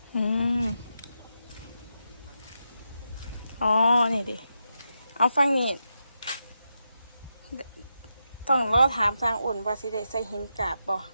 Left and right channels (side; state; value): both; inverted; correlation -0.86